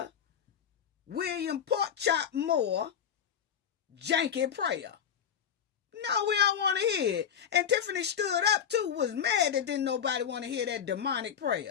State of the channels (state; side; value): quieter; right; 8.4 dB